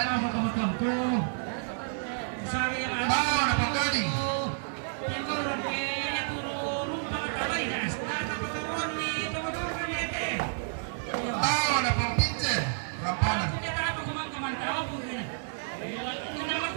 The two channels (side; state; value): left; silent; 56 dB below the other